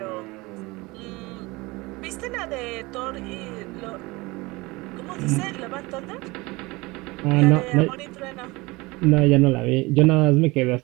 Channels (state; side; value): quieter; left; 23.0 dB